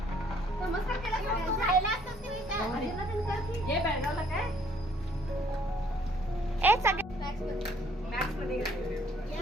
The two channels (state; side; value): normal; both; correlation 0.63